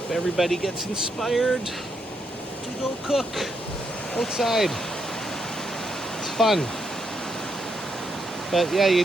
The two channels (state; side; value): normal; both; correlation 0.79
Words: everybody gets inspired to go cook outside. It's fun. But yeah, you